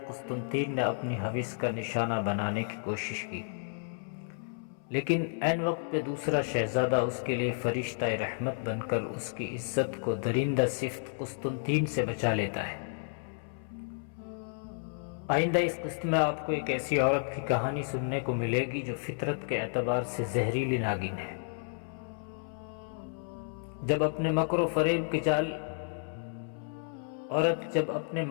قسطنطین نے اپنی ہوس کا نشانہ بنانے کی کوشش کی، لیکن عین وقت پہ دوسرا شہزادہ اس کے لیے فرشتہ رحمت بن کر اس کی عزت کو درندہ صفت قسطنطین سے بچا لیتا ہے۔ آئندہ اس قسط میں آپ کو ایک ایسی عورت کی کہانی سننے کو ملے گی جو فطرت کے اعتبار سے زہریلی ناگن ہے۔ جب اپنے مکر و فریب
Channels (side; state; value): right; silent; 57 dB below the other